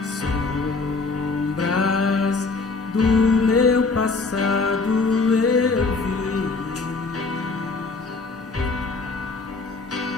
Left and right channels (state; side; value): quieter; right; 4.0 dB